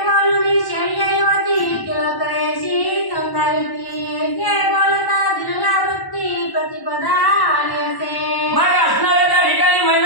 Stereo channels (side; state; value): right; late; 1.0 ms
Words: बोलून शय्यवती तिलकयशी समजावती. ऐसे बोलता दिलवृत्ती प्रतिपदा आली असे. मग असणाऱ्या त्या ठिकाणी